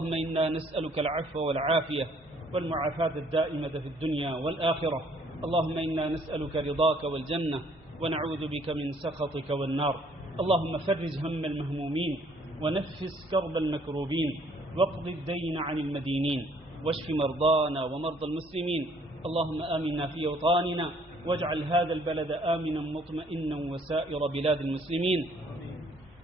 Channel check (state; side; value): normal; both; correlation 0.62